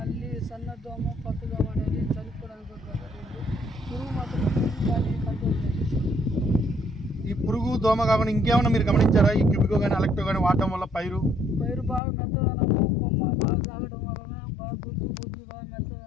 సన్నదోమ పచ్చదోమ అనేది చనిపోవడానికి పురుగు మాత్రం బాగా కంట్రోల్ అయింది. ఈ పురుగు దోమ కాకుండా ఇంకేమైనా మీరు గమనించారా? ఈ క్యూబికో కానీ అలెక్టో కానీ వాడటం వల్ల పైరు బాగా మెత్తదనము, కొమ్మ బాగా తాగడం వలన బాగా గుజ్జు బాగా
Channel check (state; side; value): drops out; right; at 12.0 s